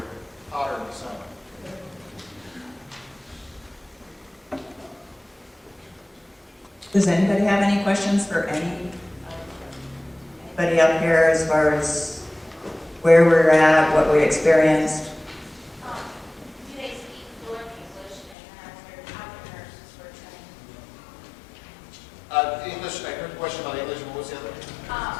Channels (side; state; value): right; drops out; at 18.4 s